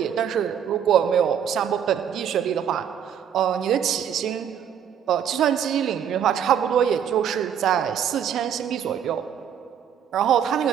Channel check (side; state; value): left; quieter; 8.7 dB